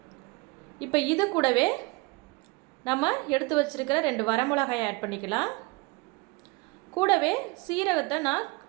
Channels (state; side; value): quieter; left; 25.8 dB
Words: இப்போ இது கூடவே நம்ம எடுத்து வச்சுருக்கிற 2 வரமிளகாயை ஆட் பண்ணிக்கலாம். கூடவே சீரகத்தை நான்